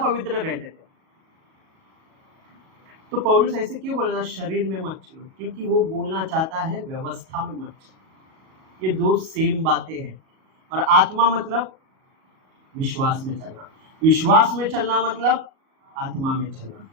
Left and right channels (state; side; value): late; left; 37 ms